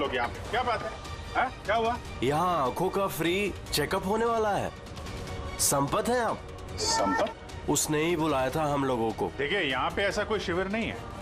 यहाँ पे? क्या बात है? क्या हुआ? यहाँ आंखों का फ्री चेकअप होने वाला है। संपत है आप? संपत? उसने ही बुलाया था हम लोगों को। देखिए यहाँ पे ऐसा कोई शिविर नहीं है।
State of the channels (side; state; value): both; identical; correlation 1.00